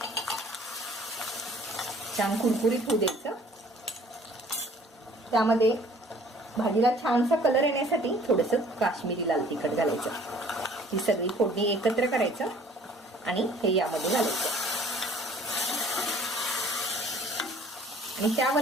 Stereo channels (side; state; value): both; normal; correlation 0.54